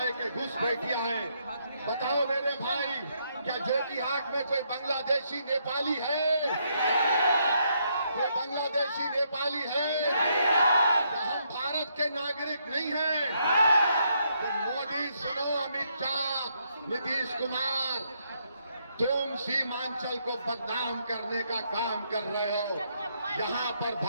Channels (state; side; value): inverted; both; correlation -0.75